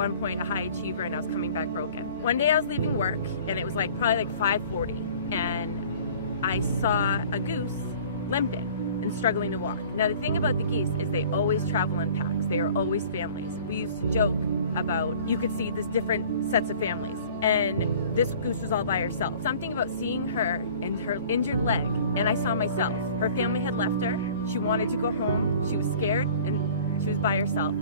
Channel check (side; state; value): both; inverted; correlation -0.48